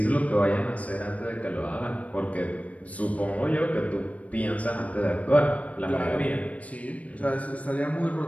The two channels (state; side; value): late; right; 0.067 ms